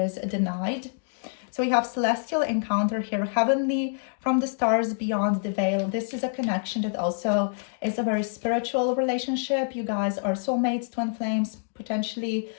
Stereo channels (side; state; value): right; silent; digital silence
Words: denied. So we have celestial encounter here, heavenly from the stars beyond the veil. This is a connection that also is a very spiritual relationship. You guys are soulmates, twin flames, potentially.